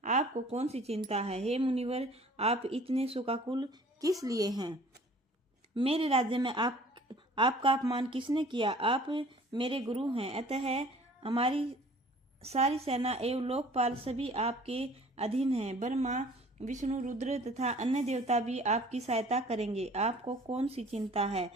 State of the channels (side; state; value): both; normal; correlation 0.51